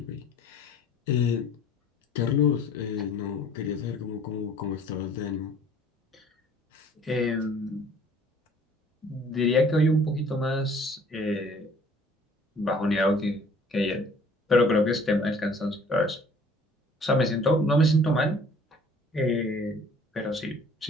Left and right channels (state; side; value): normal; both; correlation 0.54